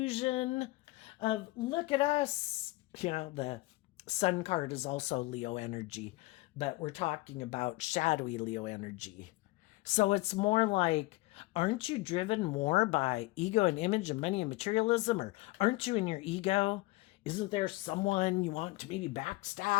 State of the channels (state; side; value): quieter; right; 21.3 dB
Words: of, look at us. The Sun card is also Leo energy, but we're talking about shadowy Leo energy. So it's more like, aren't you driven more by ego and image and money and materialism? Or aren't you in your ego? Isn't there someone you want to maybe